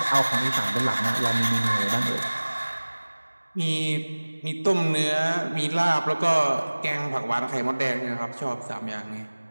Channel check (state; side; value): inverted; both; correlation -1.00